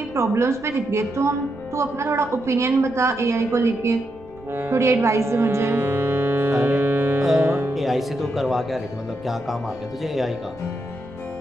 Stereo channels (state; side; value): noise; right; rumble, 23 dB below the sound